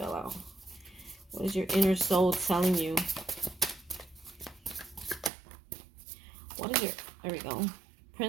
out. What is your inner soul telling you? What is your... There we go.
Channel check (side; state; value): left; drops out; at 5.3 s